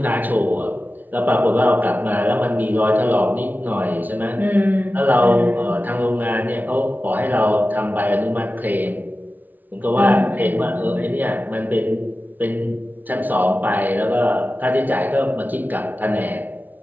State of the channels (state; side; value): late; left; 0.083 ms